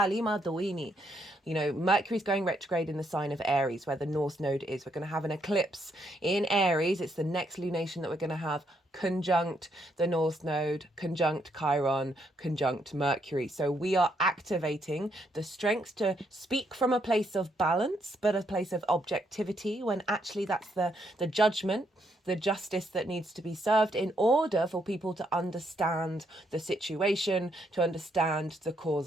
You know, Mercury's going retrograde in the sign of Aries, where the North Node is. We're going to have an eclipse in Aries. It's the next lunation that we're going to have conjunct the North Node, conjunct Chiron, conjunct Mercury. So we are activating the strength to speak from a place of balance, but a place of objectivity, when actually that's the judgment, the justice that needs to be served in order for people to understand the situation, to understand the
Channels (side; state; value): both; normal; correlation 0.75